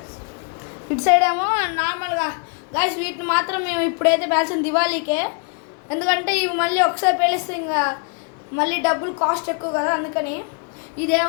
ఇటు సైడ్ ఏమో నార్మల్గా గాయస్. వీటిని మాత్రం మేము ఇప్పుడైతే పేల్చిన దివాళీకే, ఎందుకంటే ఇవి మళ్ళీ ఒకసారి పేలిస్తే ఇంకా మళ్ళీ డబ్బులు కాస్ట్ ఎక్కువ కదా, అందుకని.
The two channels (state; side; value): quieter; right; 38.1 dB